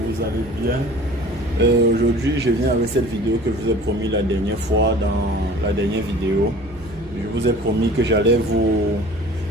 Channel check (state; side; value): noise; right; hum, 19 dB below the sound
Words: allez bien. Aujourd'hui, je viens avec cette vidéo que je vous ai promis la dernière fois dans la dernière vidéo. Je vous ai promis que j'allais vous